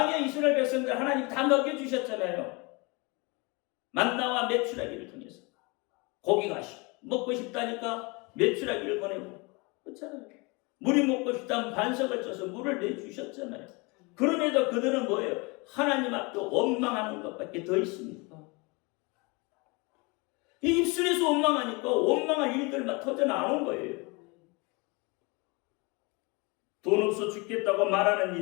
이스라엘 백성들 하나님 다 먹여주셨잖아요. 만나와 메추라기를 통해서 고기가 먹고 싶다니까 메추라기를 보내고 그렇잖아요. 물이 먹고 싶다면 반석을 쳐서 물을 내주셨잖아요. 그럼에도 그들은 뭐예요? 하나님 앞에 원망하는 것밖에 더 있습니까? 이 입술에서 원망하니까 원망할 일들만 터져 나오는 거예요. 돈 없어 죽겠다고 말하는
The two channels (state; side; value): quieter; right; 28.0 dB